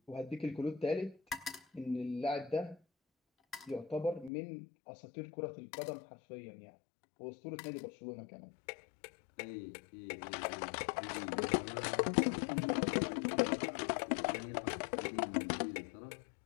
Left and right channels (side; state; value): right; drops out; at 4.3 s